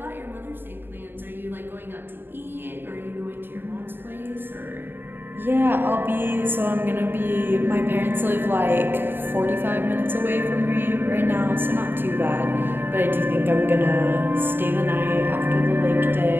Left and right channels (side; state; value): left; late; 0.098 ms